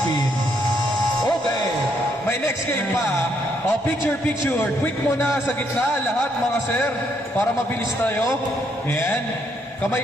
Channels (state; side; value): normal; both; correlation 0.73